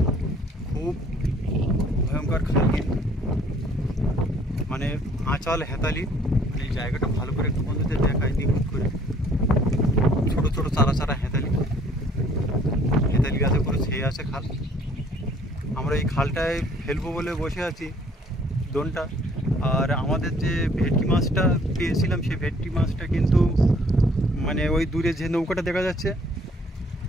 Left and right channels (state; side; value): normal; both; correlation 0.59